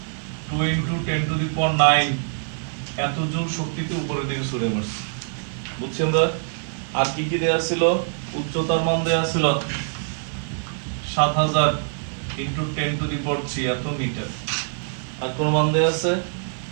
2 into 10 to the power 9 এত জুল শক্তিতে উপরের দিকে ছুঁড়ে মারছে, বুঝছি আমরা। আর কি কি দেয়া ছিল, উচ্চতার মান দেয়া ছিল 7000 into 10 to the power 3 এত মিটার। আর কোন মান দেয়া আছে,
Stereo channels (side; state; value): left; silent; digital silence